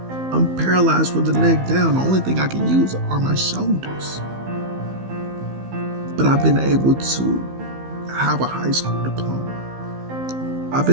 I'm paralyzed from the neck down. The only thing I can use are my shoulders. But I've been able to have a high school diploma. I've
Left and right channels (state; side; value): late; left; 15 ms